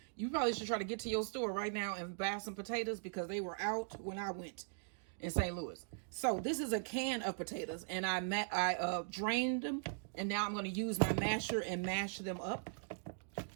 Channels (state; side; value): silent; left; digital silence